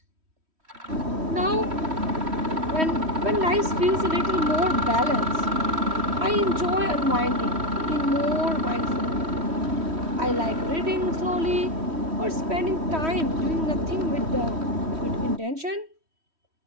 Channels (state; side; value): late; left; 3.1 ms